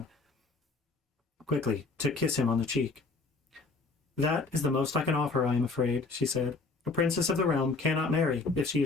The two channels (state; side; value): quieter; right; 3.8 dB